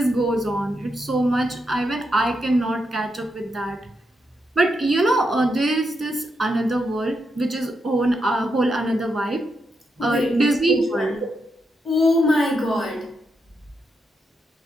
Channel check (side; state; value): both; normal; correlation 0.83